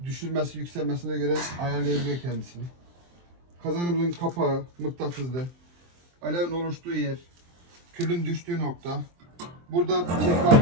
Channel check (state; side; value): late; left; 23 ms